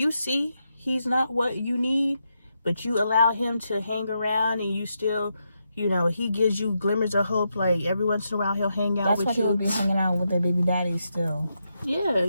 see he's not what you need, but you allow him to hang around and you still, you know, he gives you glimmers of hope, like every once in a while he'll hang out with you. That's why he'll be hanging out with their baby daddy still. Yeah,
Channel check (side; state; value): both; inverted; correlation -0.84